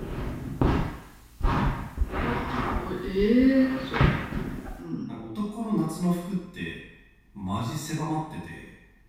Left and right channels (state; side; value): identical; both; correlation 1.00